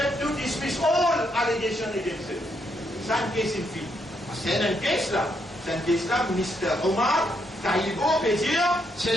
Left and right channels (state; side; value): normal; both; correlation 0.76